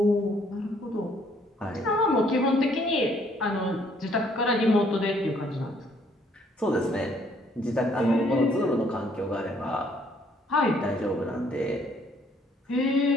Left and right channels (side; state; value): both; normal; correlation 0.65